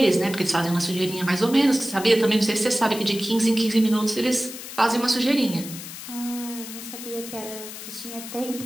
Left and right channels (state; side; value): noise; left; hiss, 11 dB below the sound